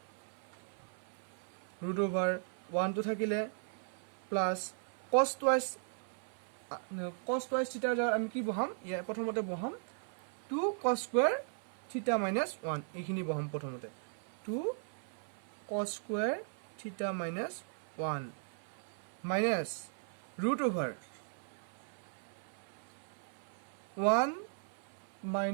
root over 1 টো থাকিলে plus cos twice theta ৰ আমি কি বহাম ইয়া প্ৰথমতে বহাম 2 cos square theta minus 1 এইখিনি বহাম প্ৰথমতে 2 cos square theta minus 1 minus root over 1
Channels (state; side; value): silent; left; 53 dB below the other